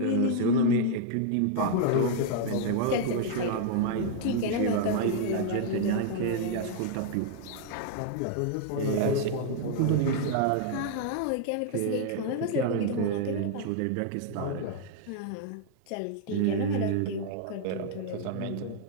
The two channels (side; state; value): both; different; correlation -0.01